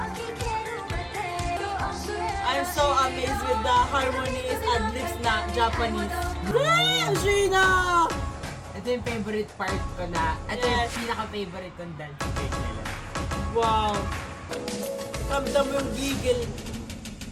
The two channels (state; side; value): identical; both; correlation 1.00